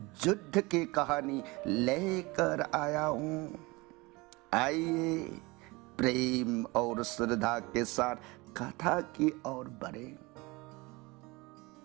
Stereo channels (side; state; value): left; quieter; 23.9 dB